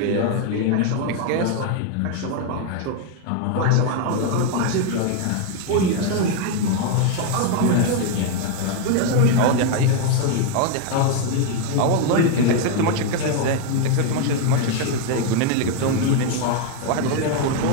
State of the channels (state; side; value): different; both; correlation 0.01